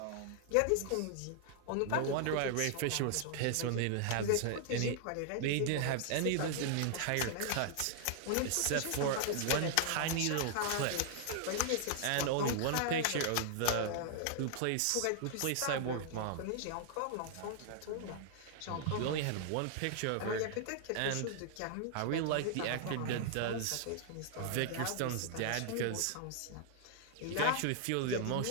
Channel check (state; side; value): different; both; correlation 0.00